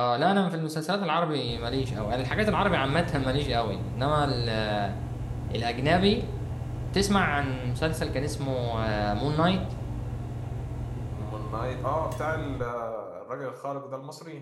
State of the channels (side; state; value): both; identical; correlation 1.00